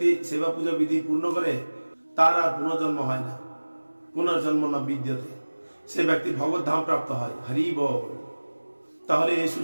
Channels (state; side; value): inverted; both; correlation -1.00